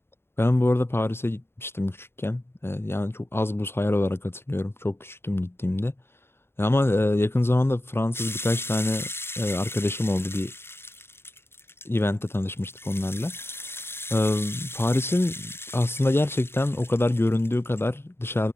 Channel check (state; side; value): late; right; 0.11 ms